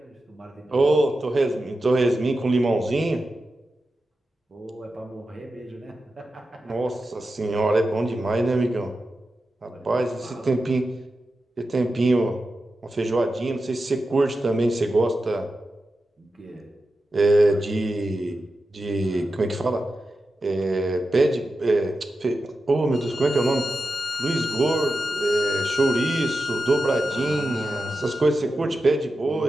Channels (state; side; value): normal; both; correlation 0.91